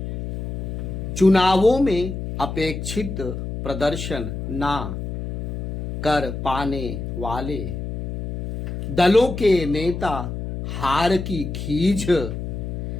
चुनावों में अपेक्षित प्रदर्शन ना कर पाने वाले दलों के नेता हार की खींच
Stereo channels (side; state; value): left; noise; hum, 6 dB below the sound